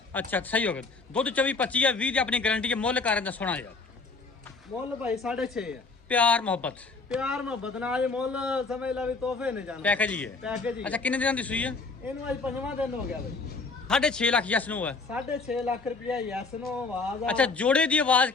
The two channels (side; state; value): right; quieter; 4.1 dB